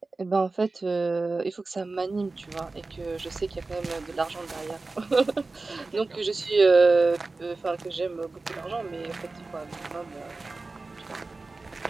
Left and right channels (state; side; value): quieter; left; 3.6 dB